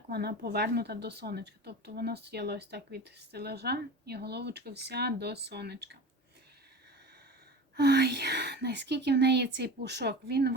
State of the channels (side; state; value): both; normal; correlation 0.32